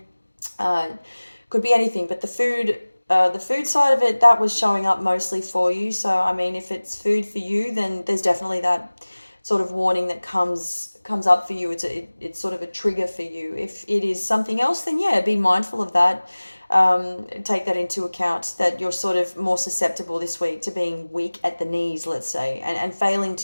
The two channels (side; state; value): both; inverted; correlation -1.00